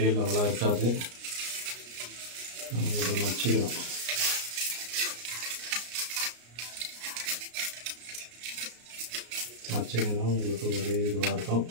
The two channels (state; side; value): late; left; 34 ms